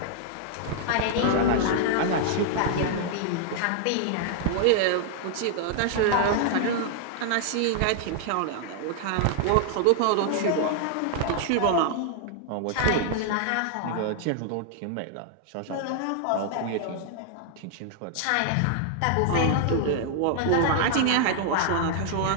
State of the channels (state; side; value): different; both; correlation -0.01